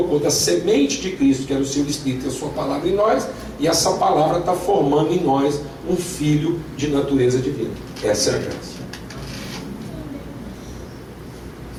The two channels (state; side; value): identical; both; correlation 1.00